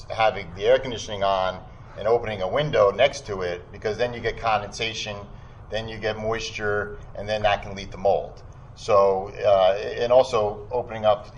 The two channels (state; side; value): identical; both; correlation 1.00